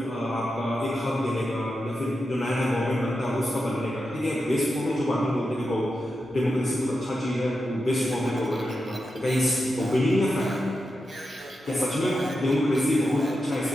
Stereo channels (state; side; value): normal; both; correlation 0.89